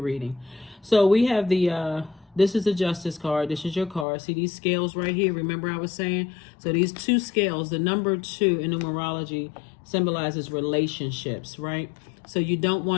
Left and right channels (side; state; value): right; drops out; at 4.0 s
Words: So we have this is the Justice card. This is your card. See these scales right here? Remember I was saying? So these 2 scales, the number 2 in numerology symbolizes relationships, right? So you don't